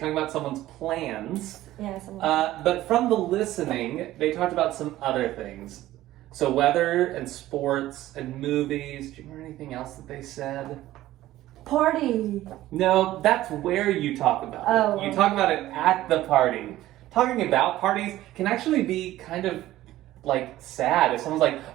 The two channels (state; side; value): quieter; left; 15.1 dB